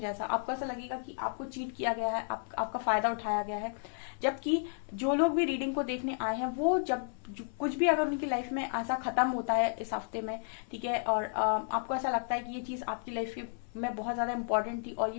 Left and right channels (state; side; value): silent; right; 56 dB below the other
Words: आपको ऐसा लगेगा कि आपको चीट किया गया है, आपका फायदा उठाया गया है। जबकि जो लोग भी रीडिंग को देखने आए हैं वो जब कुछ भी अगर उनकी लाइफ में ऐसा खत्म होता है इस हफ्ते में, ठीक है, और आपको ऐसा लगता है कि ये चीज आपकी लाइफ में बहुत ज्यादा इंपॉर्टेंट थी और